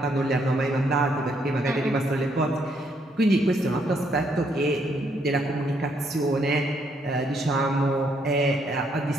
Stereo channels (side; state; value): both; normal; correlation 0.72